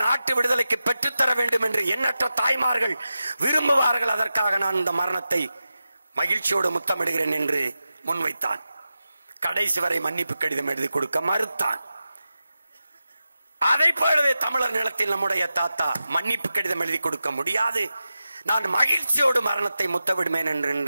நாட்டு விடுதலைக்கு பெற்றுத்தர வேண்டும் என்று எண்ணற்ற தாய்மார்கள் விரும்புவார்கள். அதற்காக நான் இந்த மரணத்தை மகிழ்ச்சியோடு முத்தமிடுகிறேன் என்று முன்வைத்தான். கடைசி வரை மன்னிப்பு கடிதம் எழுதி கொடுக்க மறுத்தான். அதை போலவே தமிழர் நிலத்தில் நம்முடைய தாத்தா மன்னிப்பு கடிதம் எழுதி கொடுக்க முடியாது, நான் மகிழ்ச்சியோடு மரணத்தை முத்தமிடுவேன்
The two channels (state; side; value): inverted; both; correlation -0.92